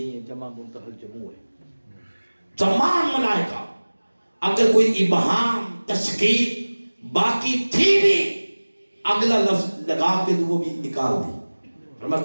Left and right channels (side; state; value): both; inverted; correlation -1.00